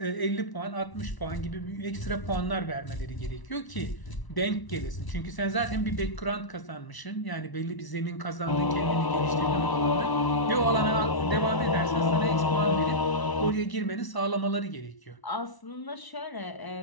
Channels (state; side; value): late; right; 1.0 ms